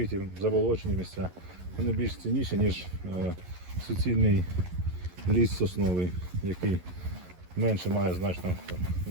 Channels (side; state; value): left; late; 11 ms